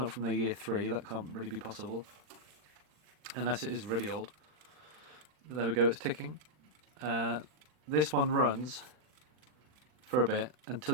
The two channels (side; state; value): left; late; 39 ms